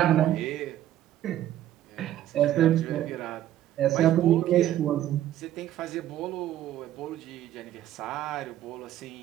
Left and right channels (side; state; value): left; quieter; 12.4 dB